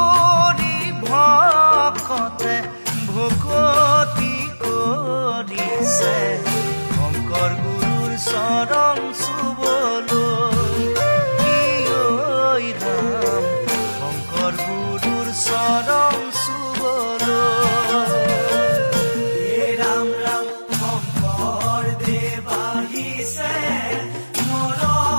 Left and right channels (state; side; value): inverted; both; correlation -1.00